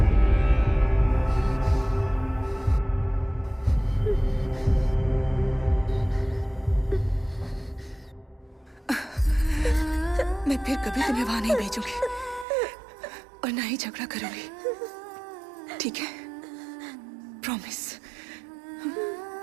मैं फिर कभी तुम्हें वहां नहीं भेजूंगी और ना ही झगड़ा करूंगी, ठीक है? प्रॉमिस।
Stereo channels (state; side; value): drops out; left; at 12.5 s